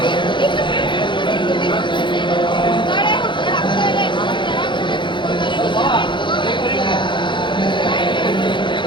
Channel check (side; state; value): right; late; 0.23 ms